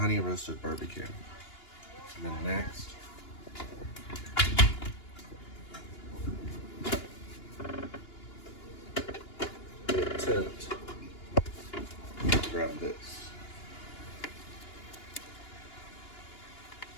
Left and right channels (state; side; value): late; right; 2.9 ms